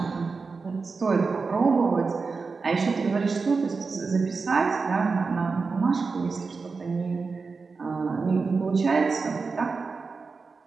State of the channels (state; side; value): quieter; left; 4.5 dB